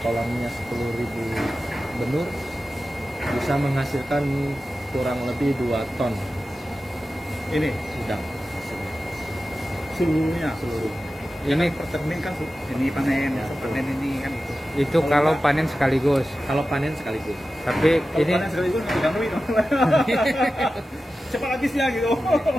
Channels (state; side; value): normal; both; correlation 0.94